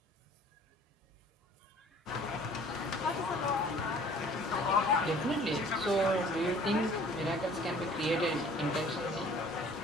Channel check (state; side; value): normal; both; correlation 0.51